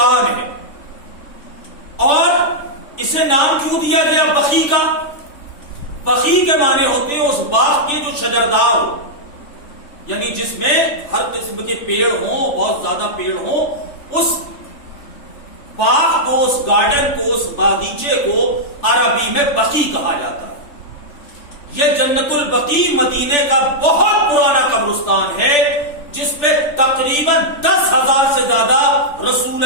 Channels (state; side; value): late; right; 3.4 ms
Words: ہے، اور اسے نام کیوں دیا گیا بقیع کا؟ بقیع کے معنی ہوتے ہیں اس باغ کے جو شجردار ہو، یعنی جس میں ہر قسم کے پیڑ ہوں، بہت زیادہ پیڑ ہوں، اس باغ کو، اس گارڈن کو، اس باغیچے کو عربی میں بقیع کہا جاتا ہے۔ یہ جنت البقیع مدینے کا بہت پرانا قبرستان ہے، جس پہ تقریباً 10,000 سے زیادہ رسول